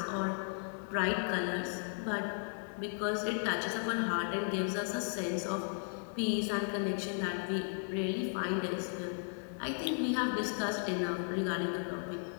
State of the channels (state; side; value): silent; right; 54 dB below the other